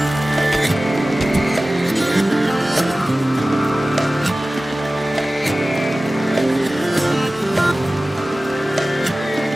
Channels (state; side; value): normal; both; correlation 0.97